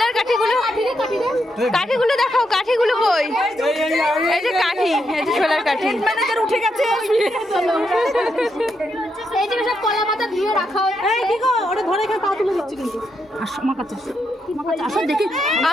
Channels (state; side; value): normal; both; correlation 0.81